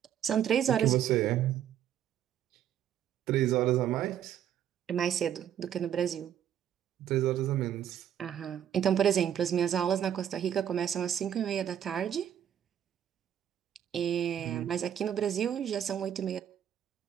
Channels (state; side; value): quieter; left; 10.0 dB